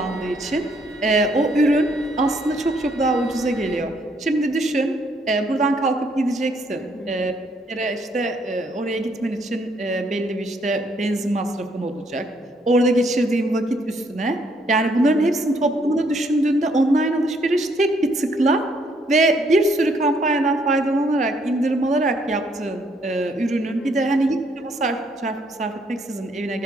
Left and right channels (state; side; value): normal; both; correlation 0.69